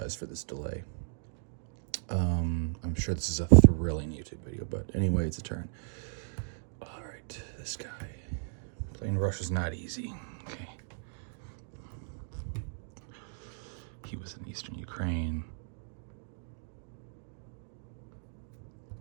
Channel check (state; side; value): silent; left; digital silence